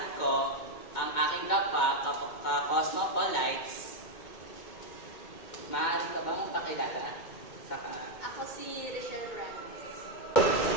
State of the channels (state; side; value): late; right; 2.2 ms